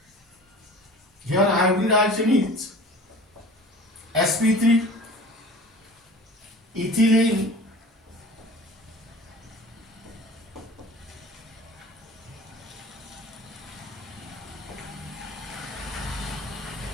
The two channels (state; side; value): normal; both; correlation 0.41